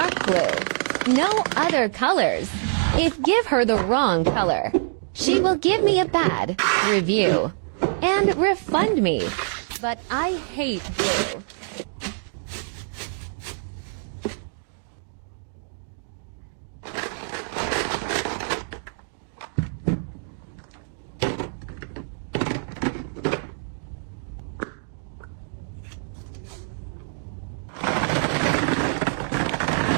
blue, no other colors. If give her the wrong color, she will give me a bad review and refund me. But I hate blue.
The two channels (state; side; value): silent; left; digital silence